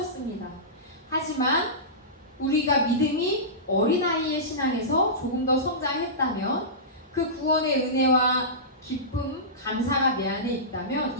하지만 우리가 믿음이 어린아이의 신앙에서 조금 더 성장했다면 그 구원의 은혜와 기쁨, 감사가 내 안에 있다면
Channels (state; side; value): normal; both; correlation -0.19